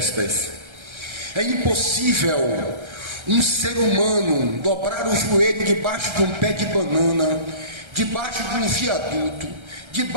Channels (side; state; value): left; late; 1.3 ms